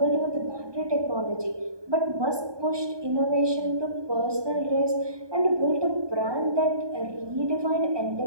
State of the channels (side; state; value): left; late; 1.2 ms